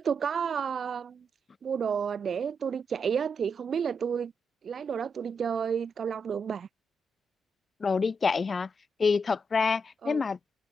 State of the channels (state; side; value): normal; both; correlation 0.82